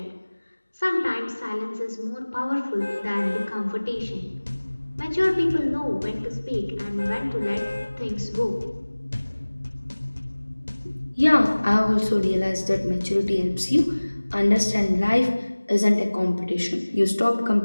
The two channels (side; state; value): both; inverted; correlation -1.00